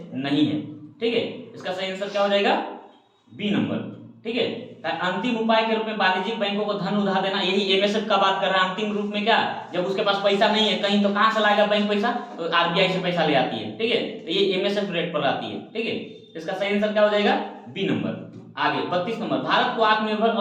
नहीं है, ठीक है। इसका सही आंसर क्या हो जाएगा, बी नंबर, ठीक है। अंतिम उपाय के रूप में वाणिज्यिक बैंकों को धन उधार देना, यही एमएसएफ का बात कर रहा है। अंतिम रूप में क्या, जब उसके पास पैसा नहीं है कहीं, तो कहां से लाएगा बैंक पैसा, तो आरबीआई से पैसा ले आती है, ठीक है, तो ये एमएसएफ रेट पर आती है, ठीक है। इसका सही आंसर क्या हो जाएगा, बी नंबर। आगे 32 नंबर, भारत को आत्मनिर्भर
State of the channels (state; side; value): identical; both; correlation 1.00